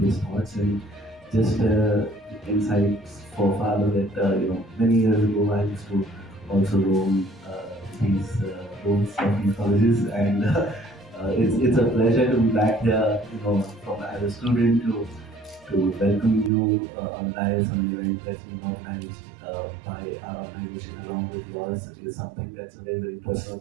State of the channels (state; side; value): drops out; left; at 16.5 s